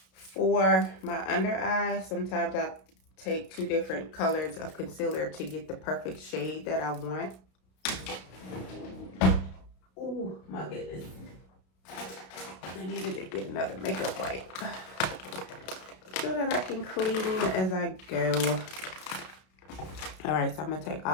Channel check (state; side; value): late; right; 32 ms